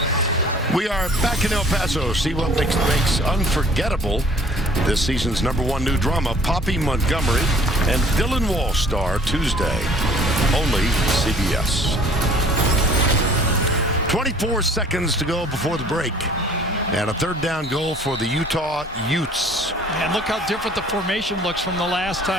We are back in El Paso. See what makes unforgettable this season's #1 new drama, Poppy Montgomery and Dylan Walsh star Tuesday. Only CBS. 24 seconds to go before the break. And a third down goal for the Utah Utes. And look how different the formation looks from the last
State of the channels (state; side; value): normal; both; correlation 0.52